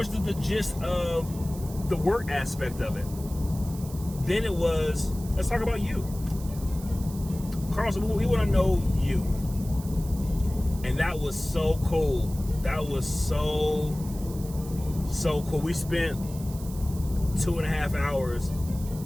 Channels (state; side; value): noise; right; hiss, 17 dB below the sound